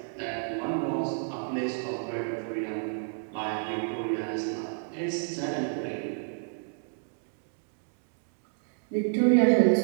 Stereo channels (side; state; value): left; silent; digital silence